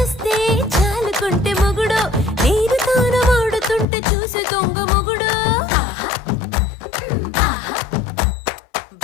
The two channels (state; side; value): drops out; right; at 3.9 s